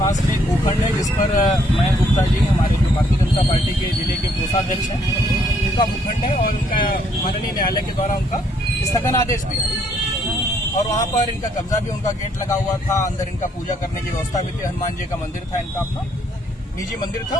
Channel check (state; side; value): normal; both; correlation 0.69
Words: में एक भूखंड है जिस पर मयंक गुप्ता जी हमारे जो भारतीय जनता पार्टी के जिले के कोषाध्यक्ष हैं उनका भूखंड है और उनका माननीय न्यायालय के द्वारा उनका स्थगन आदेश भी है और वहाँ पर इनका कब्जा भी उनका गेट लगा हुआ था। अंदर इनका पूजा करने की व्यवस्था भी थी। हनुमान जी का मंदिर था, इनका अपना निजी मंदिर था,